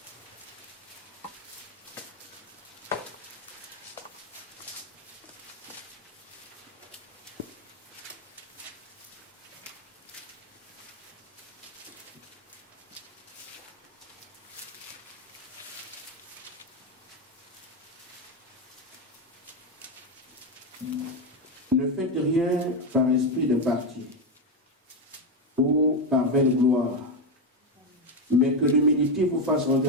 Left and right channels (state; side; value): normal; both; correlation 0.10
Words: Ne faites rien par esprit de parti ou par vaine gloire, mais que l'humilité vous fasse